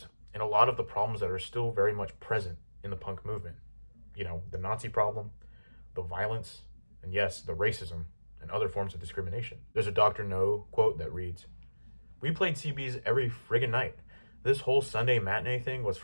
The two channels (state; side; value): inverted; both; correlation -1.00